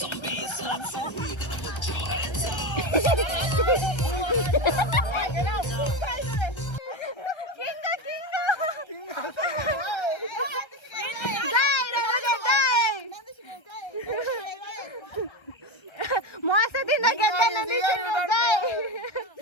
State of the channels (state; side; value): late; right; 1.3 ms